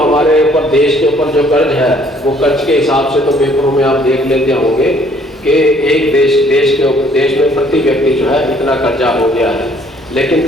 ऊपर देश के ऊपर जो कर्ज है वो कर्ज के हिसाब से तो पेपरों में आप देख लेते होंगे कि एक देश में प्रति व्यक्ति जो है इतना कर्जा हो गया है। लेकिन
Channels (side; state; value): both; normal; correlation 0.61